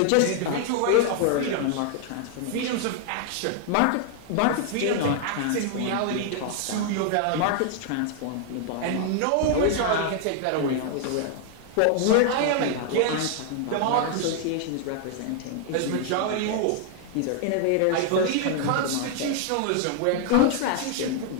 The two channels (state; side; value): different; both; correlation 0.00